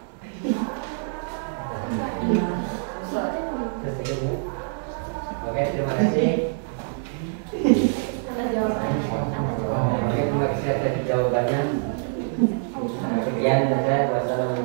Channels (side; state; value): left; silent; 62 dB below the other